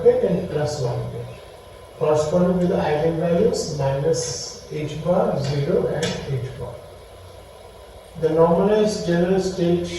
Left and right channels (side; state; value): both; identical; correlation 1.00